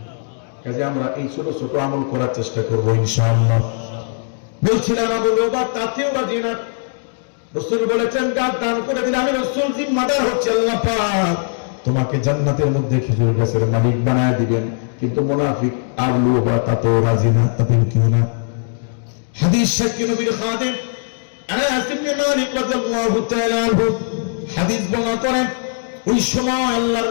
কাজে আমরা এই ছোট ছোট আমল করার চেষ্টা করবো ইনশাআল্লাহ। বলছিলাম আবু লুবাব তাতেও রাজি না। রাসূল বলেছেন, গাছ দান করে দিলে আমি রাসূল জিম্মাদার হচ্ছে, আল্লাহ পাক তোমাকে জান্নাতের মধ্যে খেজুর গাছের মালিক বানায় দিবেন। কিন্তু মুনাফিক আবু লুবাব তাতেও রাজি না। তাতে কি না? হাদিস সাক্ষী নবীর খাদেম আনাস ইবনে মালিক রাদিয়াল্লাহু তাআলা আনহু হাদিস বর্ণনা করেন, ওই সময় আল্লাহর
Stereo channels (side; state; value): right; silent; digital silence